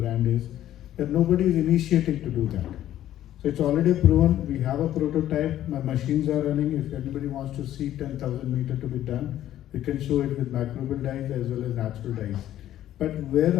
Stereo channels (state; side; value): quieter; right; 12.5 dB